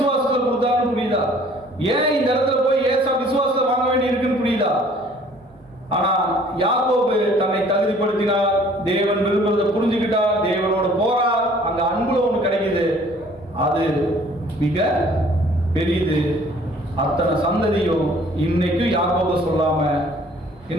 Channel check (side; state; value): both; normal; correlation 0.55